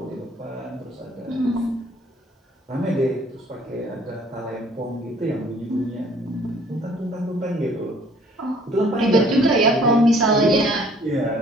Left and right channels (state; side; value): normal; both; correlation 0.56